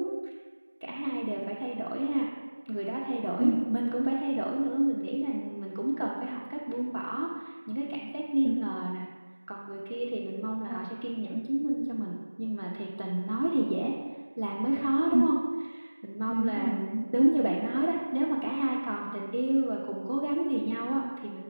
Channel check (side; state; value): both; inverted; correlation -1.00